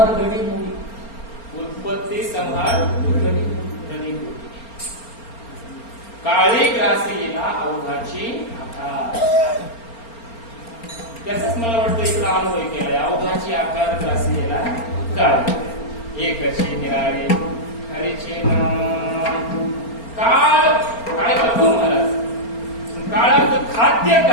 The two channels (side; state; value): right; late; 4.3 ms